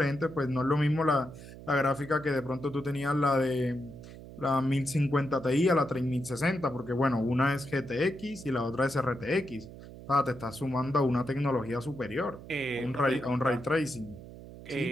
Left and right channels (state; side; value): noise; right; hum, 15 dB below the sound